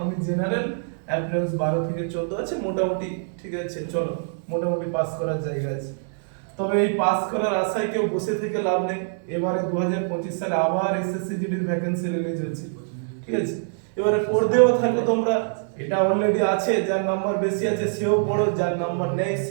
আমি জেনারেল অ্যাপ্রেন্স 12 থেকে 14 আছে, মোটামুটি ঠিক আছে, চলো মোটামুটি পাস করার জায়গা আছে। তবে এই পাস করার আশায় কেউ বসে থেকে লাভ নেই। এবারে 2025 সালে আবার এসএসসি জিডির ভ্যাকেন্সি রিলিজ হচ্ছে, ঠিক আছে। এবারে পড়তেও থাকো তোমরা, এটা অলরেডি আছে, যার নাম্বার বেশি আছে সেও পড়ো, যার নাম্বার নেই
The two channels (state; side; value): silent; left; 62 dB below the other